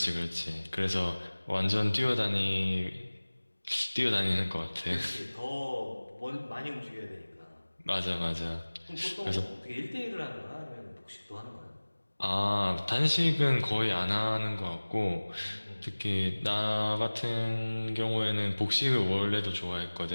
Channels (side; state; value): both; inverted; correlation -1.00